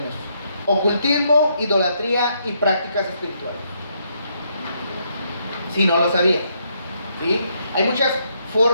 ocultismo, idolatría y prácticas espirituales. Si no lo sabía, ¿sí? Hay muchas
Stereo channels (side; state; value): both; inverted; correlation -0.74